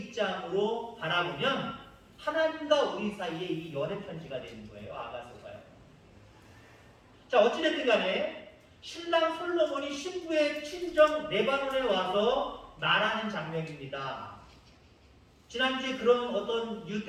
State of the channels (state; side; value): identical; both; correlation 1.00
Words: 바라보면 하나님과 우리 사이에 이 연애 편지가 되는 거예요. 아가서가요. 자, 어찌됐든 간에 신랑 솔로몬이 신부의 친정 레바논에 와서 말하는 장면입니다. 지난주에 그런 어떤